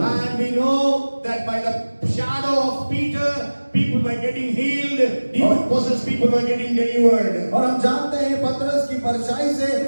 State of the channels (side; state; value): both; inverted; correlation -1.00